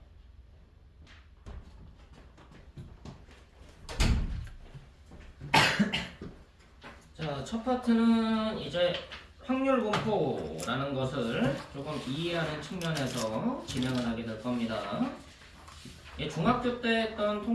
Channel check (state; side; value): identical; both; correlation 1.00